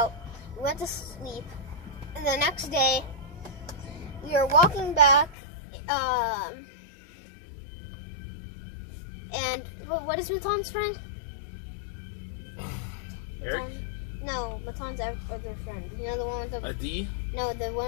we went to sleep, and the next day we were walking back. And what is Maton's friend? Eric? No, Maton's other friend. You know the one with the Adi? No, the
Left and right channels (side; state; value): right; drops out; at 5.4 s